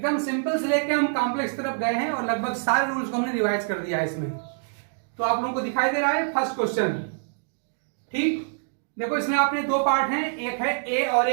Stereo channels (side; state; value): left; silent; digital silence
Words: सिंपल से लेके हम कॉम्प्लेक्स तरफ गए हैं और लगभग सारे रूल्स को हमने रिवाइज कर दिया है इसमें। तो आप लोगों को दिखाई दे रहा है फर्स्ट क्वेश्चन। ठीक, देखो इसमें आपने दो पार्ट हैं, एक है ए और